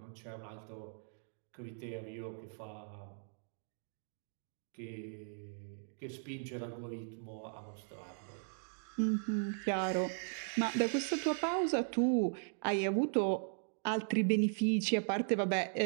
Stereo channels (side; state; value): left; silent; digital silence